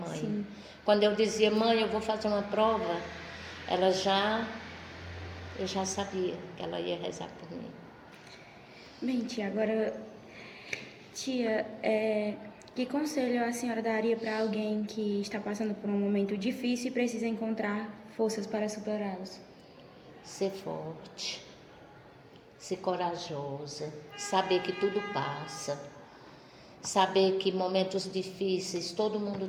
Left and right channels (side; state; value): both; identical; correlation 1.00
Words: Sim. Quando eu dizia: mãe, eu vou fazer uma prova, eu já sabia que ela ia rezar por mim. Bem, tia, agora, que conselho a senhora daria para alguém que está passando por um momento difícil e precisa encontrar forças para superá-los? Ser forte, ser corajosa, saber que tudo passa, saber que momentos difíceis todo